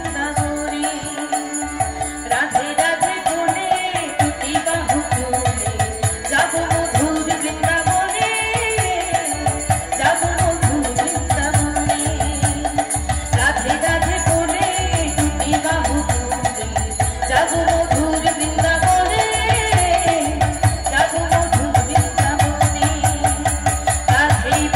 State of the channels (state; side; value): identical; both; correlation 1.00